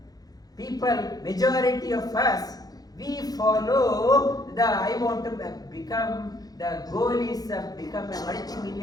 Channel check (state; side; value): late; right; 0.19 ms